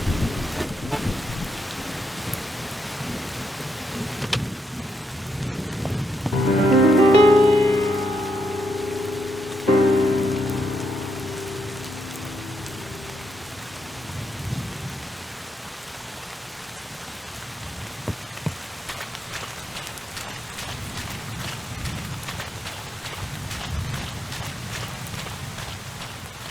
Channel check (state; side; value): normal; both; correlation 0.80